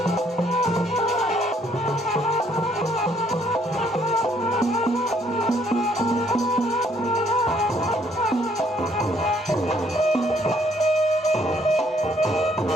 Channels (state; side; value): normal; both; correlation 0.66